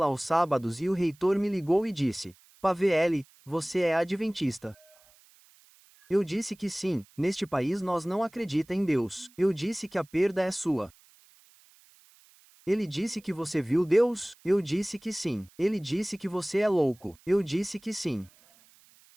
aos sábados e o reitor me ligou e disse: Pavel, você é adventista? Eu disse que sim, neste país nós não acredita em Deus. Eu disse que a perda é sua. Ele disse que você viu Deus? Eu disse que sim. Ele disse que você é louco. Eu disse que sim.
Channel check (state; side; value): noise; right; hiss, 29 dB below the sound